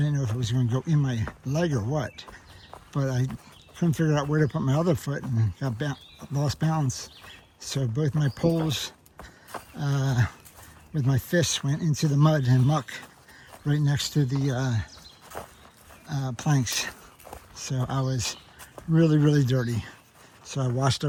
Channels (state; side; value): identical; both; correlation 1.00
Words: know if it was going to go in my leg or what, but I couldn't figure out where to put my other foot and lost balance. So both my poles with my fists went into the mud and muck right next to the planks. So I was really dirty. So I washed